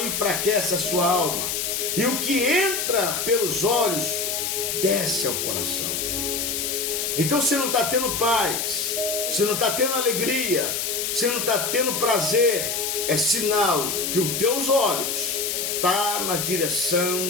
a sua alma. E o que entra pelos olhos, desce ao coração. Então, se não está tendo paz, se não está tendo alegria, se não está tendo prazer, é sinal que os teus olhos estão na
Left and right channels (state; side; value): noise; left; hiss, 1 dB below the sound